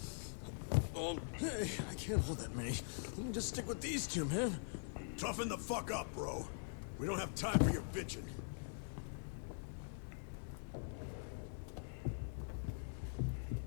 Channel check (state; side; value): silent; right; digital silence